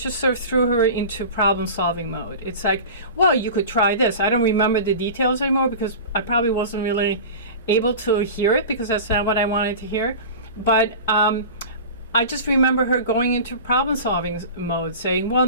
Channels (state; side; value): inverted; both; correlation -0.33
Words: sort of threw her into problem-solving mode. It's like, well, you could try this. I don't remember the details anymore, because I probably wasn't really able to hear it, because that's not what I wanted to hear. But I just remember her going into problem-solving mode, saying, well,